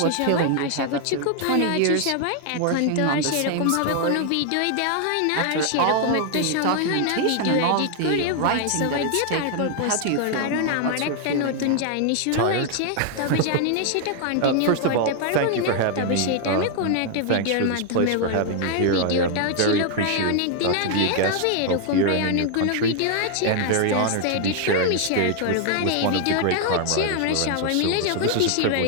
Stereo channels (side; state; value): both; different; correlation 0.00